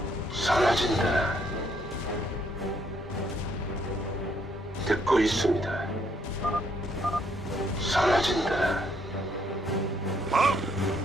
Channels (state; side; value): normal; both; correlation 0.70